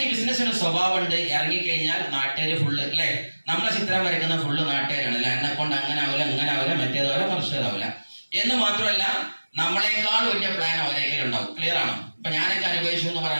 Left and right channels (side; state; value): both; inverted; correlation -1.00